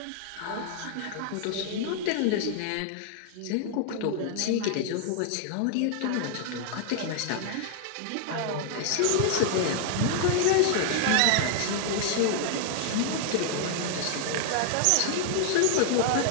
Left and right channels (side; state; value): both; different; correlation 0.00